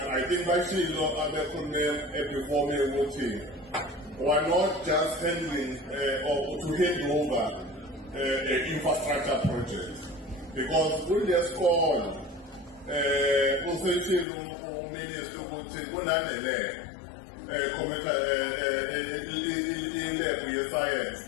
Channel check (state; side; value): drops out; right; at 14.2 s